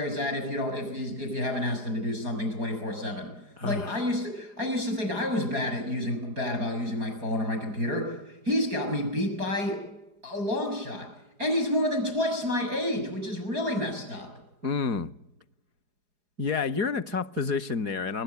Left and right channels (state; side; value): late; left; 4.8 ms